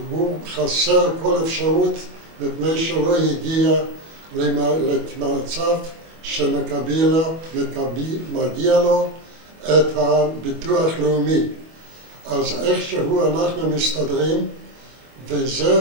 הוא חסר כל אפשרות מפני שלא הגיע למצב שמגיע לו את הביטוח לאומי. אז איכשהו אנחנו מסתדרים,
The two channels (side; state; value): left; late; 25 ms